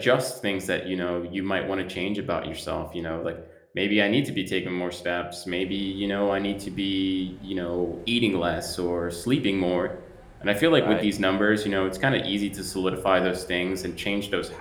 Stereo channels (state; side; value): identical; both; correlation 1.00